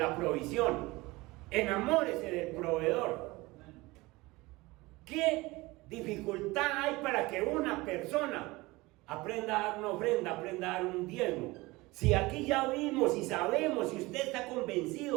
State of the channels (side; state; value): left; quieter; 21.6 dB